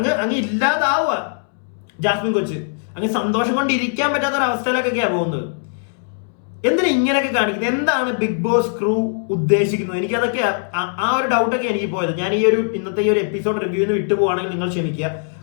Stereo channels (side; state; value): right; silent; 66 dB below the other